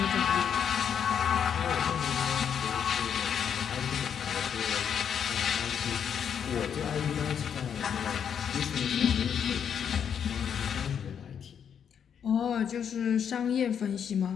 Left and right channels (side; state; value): right; quieter; 8.0 dB